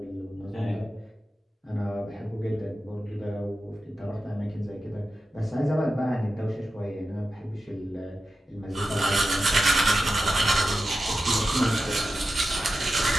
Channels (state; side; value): normal; both; correlation 0.92